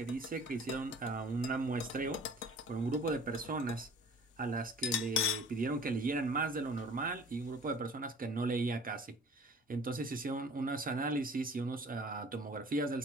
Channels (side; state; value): both; normal; correlation 0.47